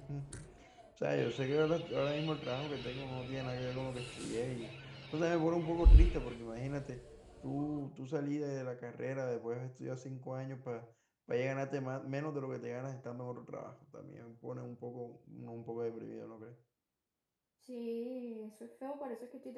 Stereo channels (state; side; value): identical; both; correlation 1.00